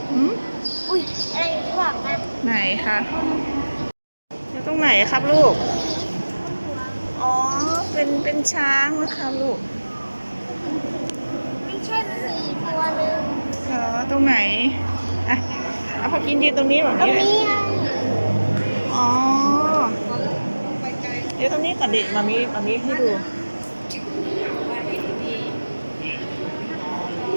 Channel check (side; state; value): both; inverted; correlation -1.00